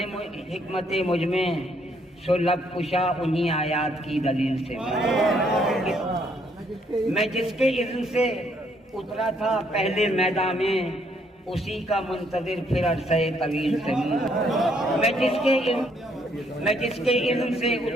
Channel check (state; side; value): normal; both; correlation 0.69